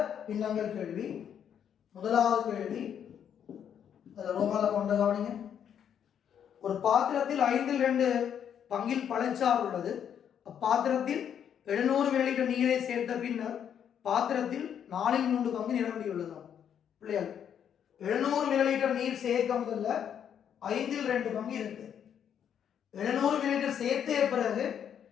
பின்னங்கள் கேள்வி. முதலாவது கேள்வி அதில் ரோமால கொண்ட கவனிங்க. ஒரு பாத்திரத்தில் 5/2 பங்கில் பழச்சாறு உள்ளது. அப்பாத்திரத்தில் 700 மில்லிலிட்டர் நீரை சேர்த்த பின்னர் பாத்திரத்தில் 4/3 பங்கு நிரம்பியுள்ளதாம். பிள்ளைகள், 700 மில்லிலிட்டர் நீர் சேர்க்க முதல்ல 5/2 பங்கு இருக்கு. 700 மில்லிலிட்டர் சேர்த்த பிறகு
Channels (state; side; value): quieter; right; 8.7 dB